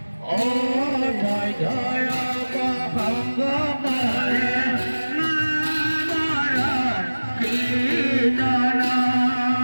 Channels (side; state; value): both; inverted; correlation -1.00